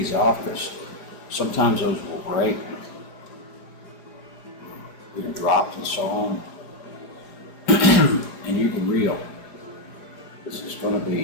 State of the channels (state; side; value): late; right; 4.9 ms